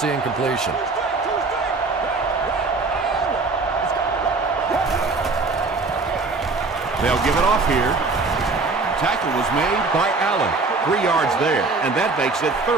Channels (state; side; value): quieter; left; 3.8 dB